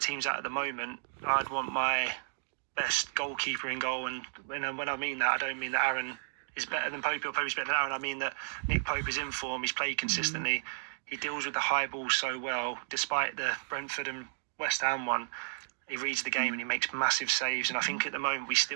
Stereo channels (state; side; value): silent; left; digital silence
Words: at the moment, I'd want my best goalkeeper in goal. And when I mean that, I don't mean that Aaron is better than Popey or Popey's better than Aaron. I mean that Nick Pope is in form. He's played consistently. He deals with the high ball so well, despite the Brentford and West Ham one. He reads the game and he makes massive saves. And I think at the moment we